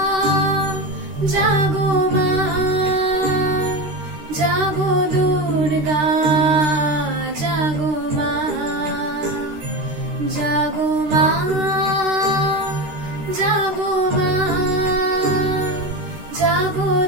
জাগো মা, জাগো দুর্গা, জাগো মা, জাগো মা, জাগো মা, জাগো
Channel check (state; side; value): late; left; 13 ms